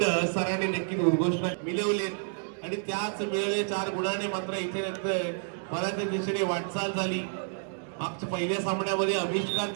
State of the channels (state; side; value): silent; left; digital silence